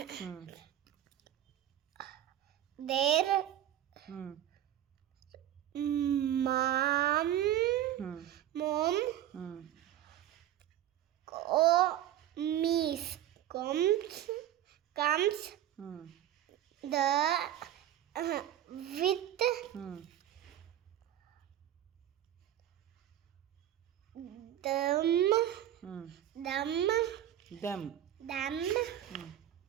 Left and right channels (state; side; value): quieter; left; 11.9 dB